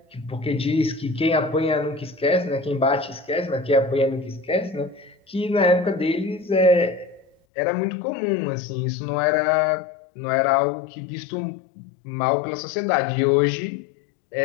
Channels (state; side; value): drops out; right; at 7.3 s